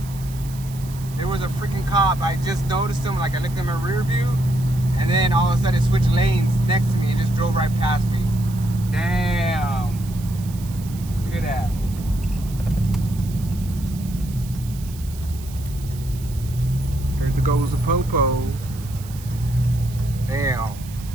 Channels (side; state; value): right; noise; hiss, 18 dB below the sound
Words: There was a freaking cop. I just noticed him, like I looked in my rear view, and then all of a sudden it switched lanes next to me and just drove right past me. Damn. Look at that. There goes the popo. Damn.